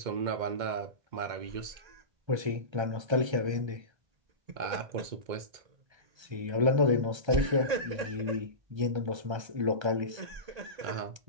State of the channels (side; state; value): left; late; 1.3 ms